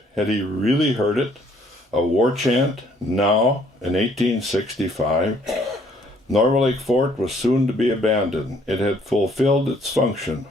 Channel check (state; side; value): normal; both; correlation 0.63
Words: Had he really heard it? A war chant, now, in 1865? Norway Lake Fort was soon to be abandoned. It had fulfilled its function.